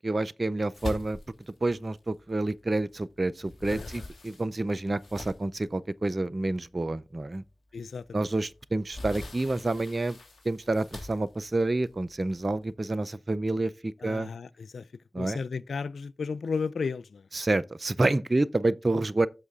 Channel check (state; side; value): normal; both; correlation 0.96